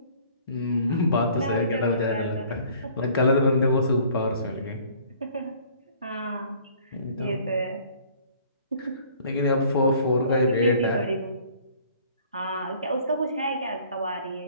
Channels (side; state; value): both; inverted; correlation -0.54